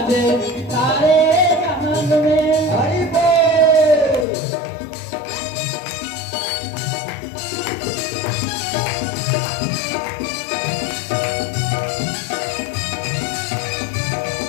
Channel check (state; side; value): drops out; right; at 4.2 s